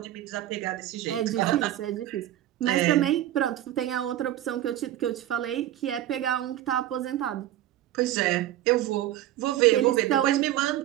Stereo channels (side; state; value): left; quieter; 13.1 dB